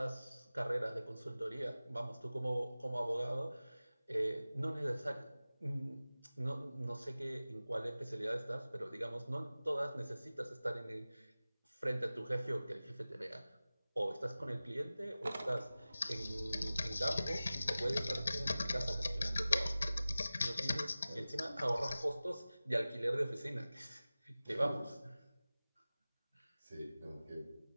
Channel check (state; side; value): inverted; both; correlation -0.97